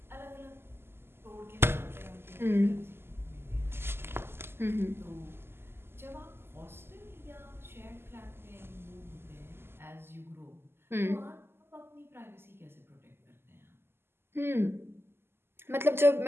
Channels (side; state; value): left; late; 0.12 ms